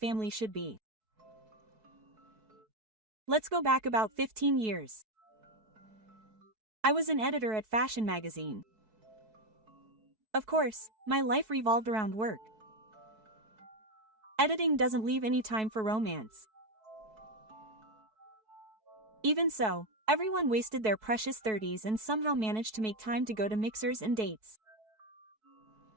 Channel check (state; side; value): late; left; 4.6 ms